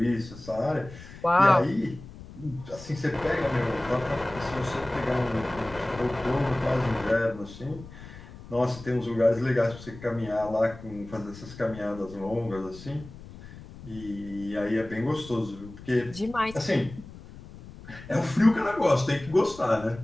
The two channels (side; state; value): left; noise; rumble, 16 dB below the sound